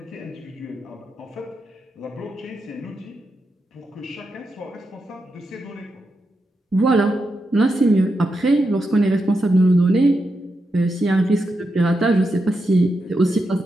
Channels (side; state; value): both; normal; correlation 0.86